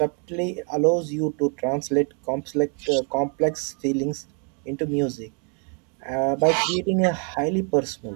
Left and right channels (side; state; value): left; quieter; 39.5 dB